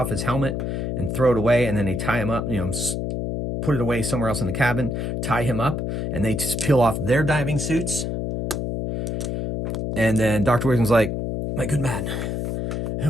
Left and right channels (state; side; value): noise; left; hum, 2 dB below the sound